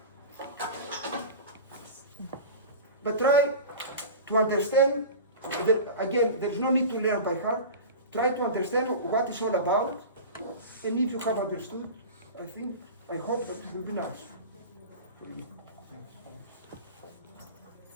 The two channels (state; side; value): inverted; both; correlation -0.33